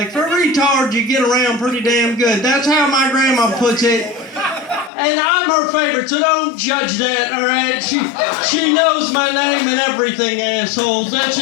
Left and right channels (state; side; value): drops out; right; at 4.9 s